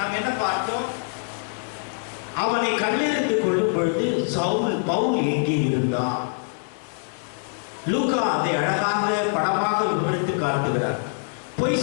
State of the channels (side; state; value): right; silent; 62 dB below the other